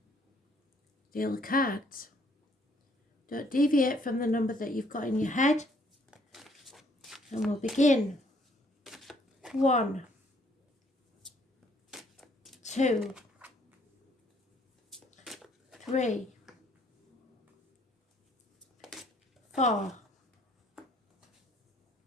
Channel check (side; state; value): both; normal; correlation 0.64